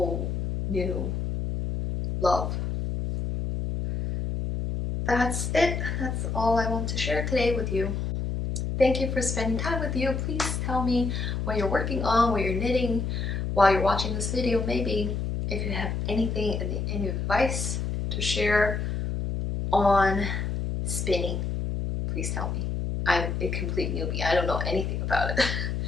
new love. That's it. That's all I want to share today with you. Thank you for spending time with you. Please tell me what you're working on, what you're knitting while you're watching this video. Maybe if you have anything, any advice to share on spinning, please tell me. I'm a complete newbie. I don't know anything about it.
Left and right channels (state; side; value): noise; left; hum, 2 dB below the sound